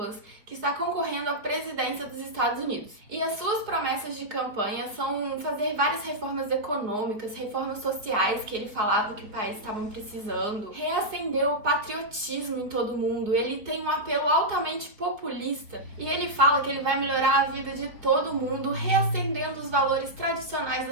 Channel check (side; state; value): left; late; 4.6 ms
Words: que está concorrendo à presidência dos Estados Unidos. E as suas promessas de campanha são fazer várias reformas econômicas, reformas sociais que ele falava que o país estava precisando, reacender o patriotismo em todo mundo. Ele tem um apelo altamente populista e ele fala que ele vai melhorar a vida de todo mundo, reacendendo os valores tradicionais